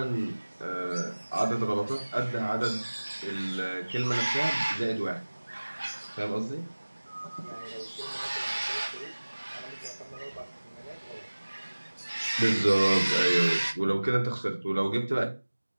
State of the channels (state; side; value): inverted; both; correlation -1.00